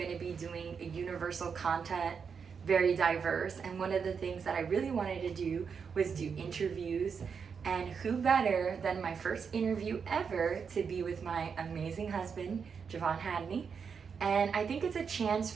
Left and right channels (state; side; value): quieter; left; 6.2 dB